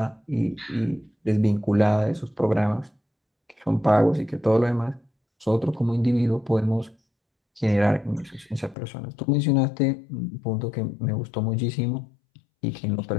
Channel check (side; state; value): right; drops out; at 8.8 s